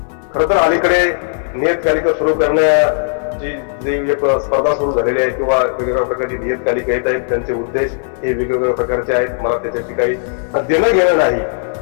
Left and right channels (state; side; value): silent; right; digital silence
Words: खरं तर अलीकडे नियतकालिक सुरू करण्याची जी एक स्पर्धा सुरू झालेली आहे, किंवा वेगवेगळ्या प्रकारची नियतकालिक येत आहेत, त्यांचे उद्देश हे वेगवेगळ्या प्रकारचे आहेत. मला त्याच्याशी काही देणं घेणं नाही,